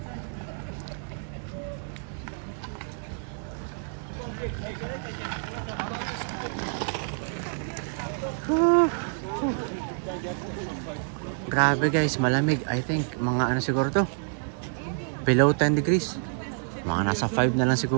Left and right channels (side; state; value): left; silent; 59 dB below the other